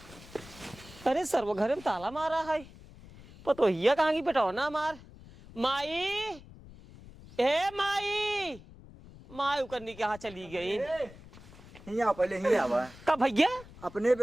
अरे सर्व घरे में ताला मारा है पतो हिया कहाँ की बेटा ना मार माई ए माई माई उकरनी के यहाँ चली गई हिया पहले हिया आवा कब भैया अपने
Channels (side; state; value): left; noise; rumble, 19 dB below the sound